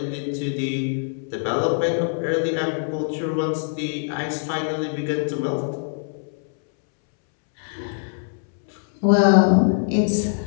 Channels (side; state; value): right; silent; 63 dB below the other